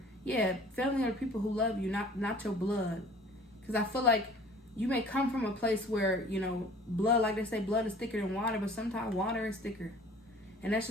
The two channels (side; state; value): both; normal; correlation 0.49